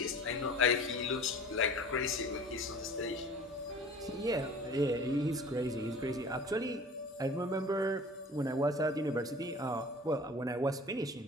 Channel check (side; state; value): both; normal; correlation 0.43